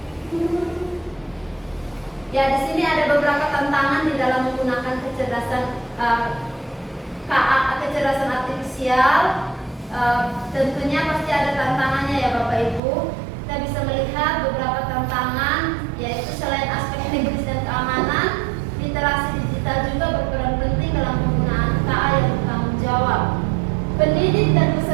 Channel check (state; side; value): drops out; left; at 12.8 s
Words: Ya, di sini ada beberapa tantangan di dalam menggunakan kecerdasan KA, kecerdasan artifisial. Tentunya pasti ada tantangannya ya Bapak Ibu. Kita bisa melihat beberapa tantangan, yaitu selain aspek teknis dan keamanan, literasi digital juga berperan penting dalam penggunaan KA yang bertanggung jawab. Pendidik dan